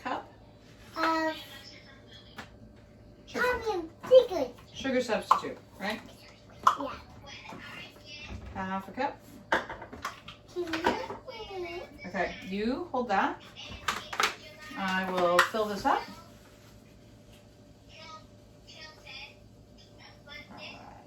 Secret. Sugar substitute, right? Yeah. Half a cup. Okay, you hold that. I will fill this up. Alright.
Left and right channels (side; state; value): both; identical; correlation 1.00